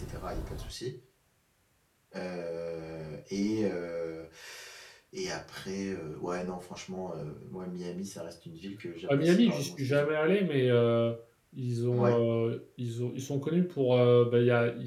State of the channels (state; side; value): identical; both; correlation 1.00